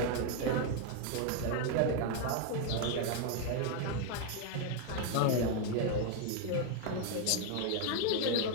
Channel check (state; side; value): different; both; correlation 0.01